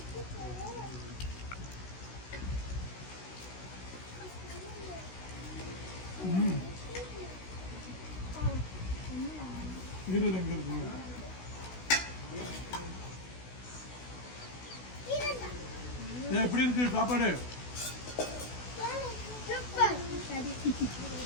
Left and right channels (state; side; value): late; right; 16 ms